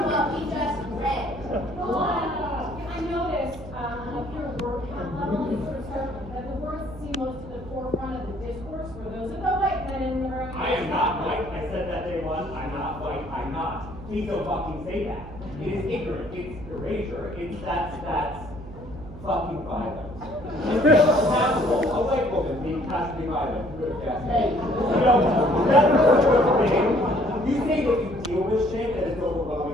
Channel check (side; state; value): right; noise; hum, 14 dB below the sound